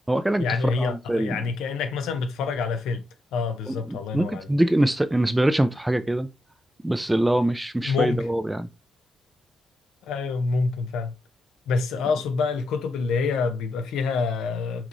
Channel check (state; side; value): normal; both; correlation 0.85